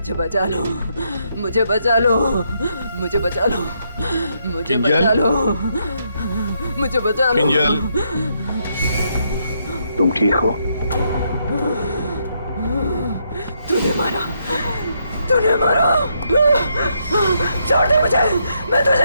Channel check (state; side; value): inverted; both; correlation -0.77